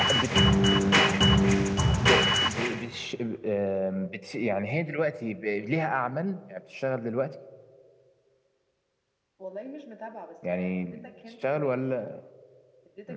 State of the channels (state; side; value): identical; both; correlation 1.00